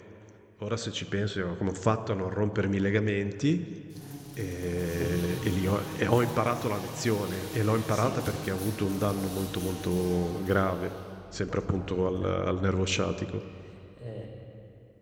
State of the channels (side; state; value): both; identical; correlation 1.00